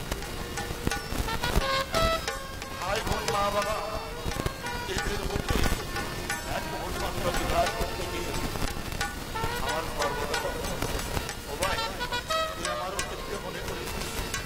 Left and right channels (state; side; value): identical; both; correlation 1.00